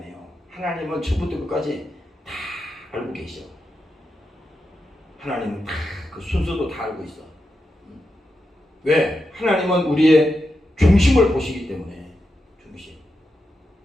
하나님은 처음부터 끝까지 다 알고 계셔. 하나님은 다 그 순서도 다 알고 있어. 왜? 하나님은 우리의 중심을 보시기 때문에. 중심.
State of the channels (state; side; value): normal; both; correlation 0.87